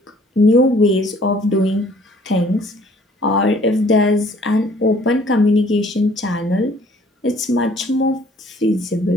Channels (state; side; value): normal; both; correlation 0.57